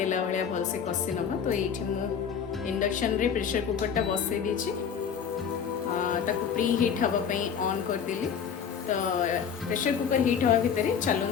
भलिया भल से कषि नवा। तो एठी मु इंडक्शन रे प्रेशर कुकर टा बसई देछि, ताको प्री हीट हवा पई ऑन कर देली। तो प्रेशर कुकर हीट हवा भितरे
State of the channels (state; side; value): quieter; right; 7.3 dB